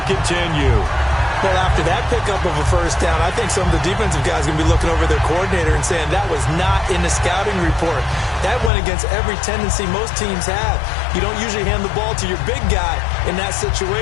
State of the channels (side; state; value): right; drops out; at 8.7 s